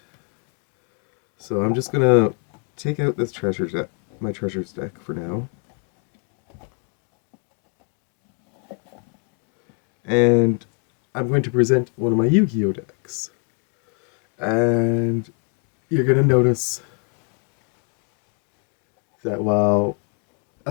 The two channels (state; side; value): quieter; right; 39.5 dB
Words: So I'm just gonna take out this my Treasures deck for now. And I'm going to present one of my Yu-Gi-Oh decks. And you're gonna notice that while